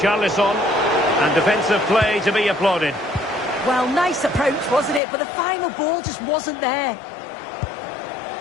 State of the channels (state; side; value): drops out; right; at 5.0 s